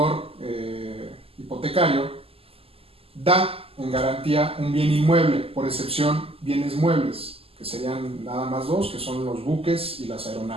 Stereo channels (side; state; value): left; late; 0.28 ms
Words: hipotecario da en garantía un bien inmueble, por excepción bienes muebles, que serían nada más dos, que son los buques y las